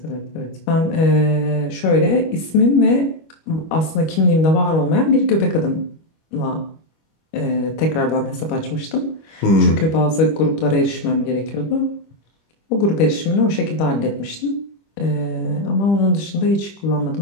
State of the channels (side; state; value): right; late; 25 ms